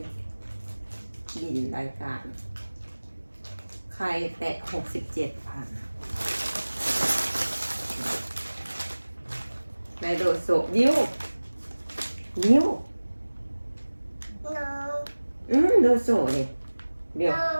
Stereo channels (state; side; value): inverted; both; correlation -1.00